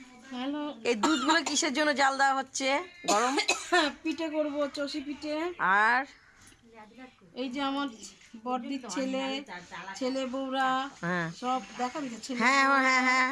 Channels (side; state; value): both; identical; correlation 1.00